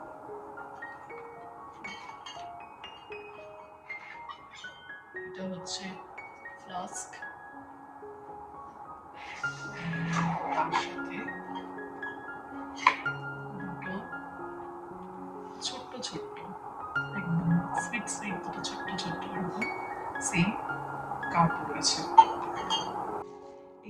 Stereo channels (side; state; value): both; identical; correlation 1.00